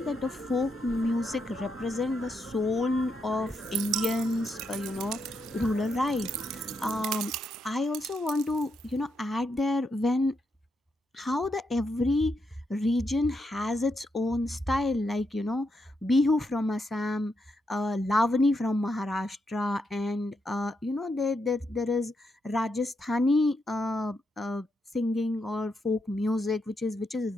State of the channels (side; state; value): both; normal; correlation 0.81